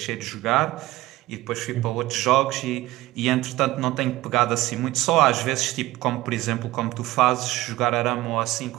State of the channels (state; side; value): quieter; left; 17.5 dB